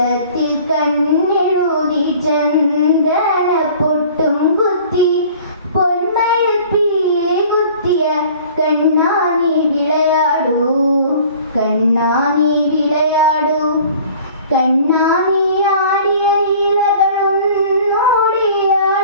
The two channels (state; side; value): inverted; both; correlation -0.48